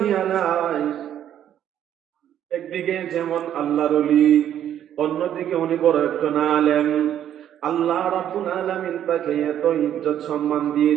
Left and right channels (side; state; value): left; quieter; 10.5 dB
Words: আলাইহি একদিকে যেমন আল্লাহর ওলি, অন্যদিকে উনি বড় একজন আলেম। আল্লাহ রাব্বুল আলামিন তাকে এত ইজ্জত সম্মান